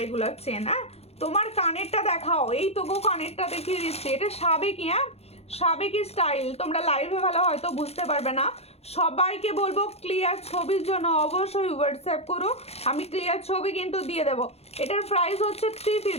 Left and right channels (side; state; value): right; late; 0.30 ms